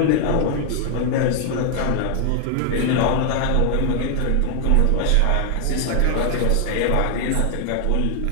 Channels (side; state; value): both; different; correlation 0.00